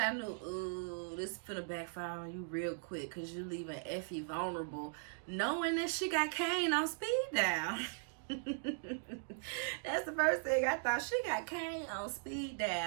knew, ooh, this is finna backfire on you real quick because you're leaving Effie vulnerable, knowing that she got Kane on speed dial. That's the first thing I thought. She got Kane on speed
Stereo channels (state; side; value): silent; left; digital silence